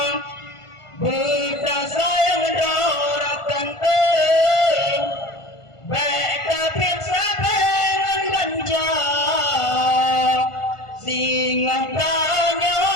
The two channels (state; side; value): late; right; 1.5 ms